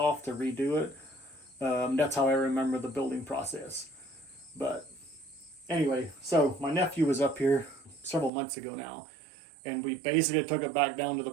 to redo it. That's how I remember the building process. But anyway, so my nephew was up here several months ago now, and we basically took it back down to the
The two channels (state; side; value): drops out; left; at 8.3 s